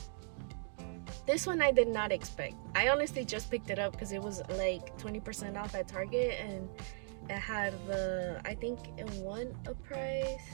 this one I did not expect. I honestly just picked it up because it was like 20% off at Target, and it had I think it won a prize.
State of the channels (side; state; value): left; silent; 53 dB below the other